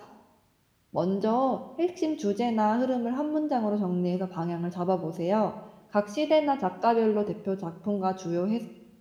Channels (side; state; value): both; identical; correlation 1.00